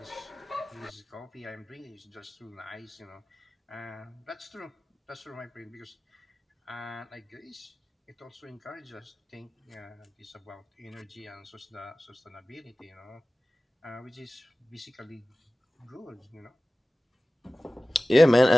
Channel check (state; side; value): normal; both; correlation 0.97